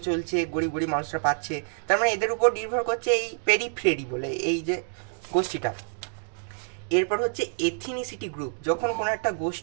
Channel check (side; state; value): left; silent; digital silence